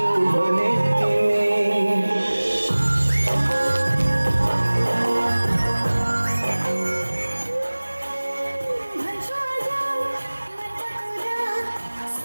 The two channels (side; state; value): both; inverted; correlation -1.00